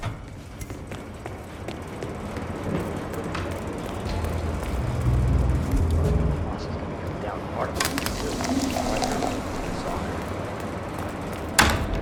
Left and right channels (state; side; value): identical; both; correlation 1.00